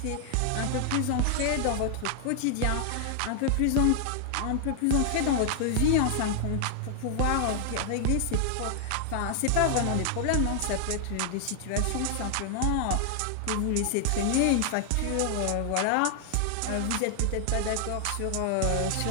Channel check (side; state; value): both; different; correlation 0.00